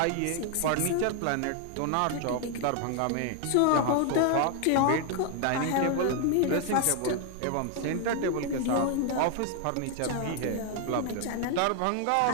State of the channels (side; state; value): both; different; correlation 0.00